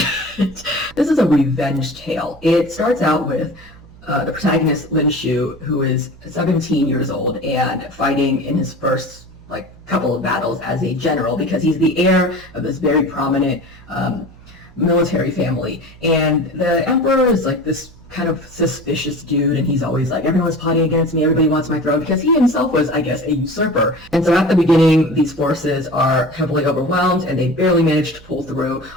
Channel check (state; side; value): noise; right; hum, 22 dB below the sound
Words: it. This is a revenge tale. It starts out with the protagonist, Lin Shu, who is 17 years old and fighting in his first couple of battles as a general because he's the heir of this very prominent military family. And the emperor is like this kind of suspicious dude, and he's always like, everyone's plotting against me, everybody wants my throne, because he himself was, I guess, a usurper. And so at the beginning, these forces are heavily overwhelmed, and they barely manage to pull through,